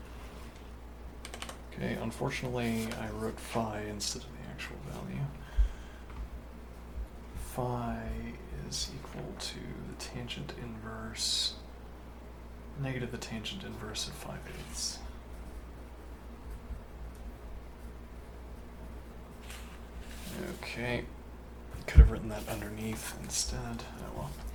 Okay, unfortunately I wrote phi instead of the actual value. Phi is equal to the tangent inverse, negative the tangent inverse of 5/8. Okay, could have written that underneath instead. Oh well.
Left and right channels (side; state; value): both; identical; correlation 1.00